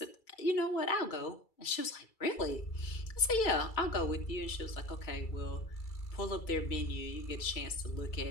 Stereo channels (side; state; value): right; late; 2.3 ms